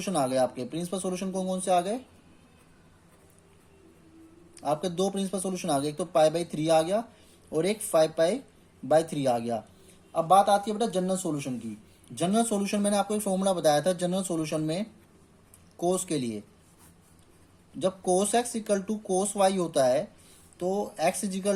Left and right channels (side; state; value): both; identical; correlation 1.00